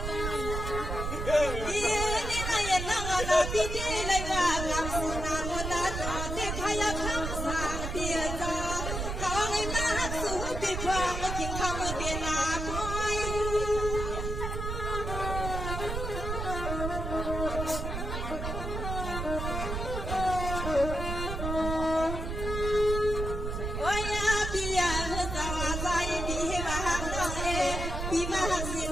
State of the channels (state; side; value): noise; right; rumble, 4 dB below the sound